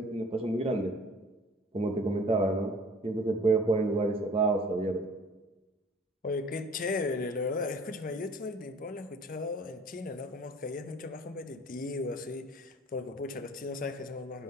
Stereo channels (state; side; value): normal; both; correlation 0.49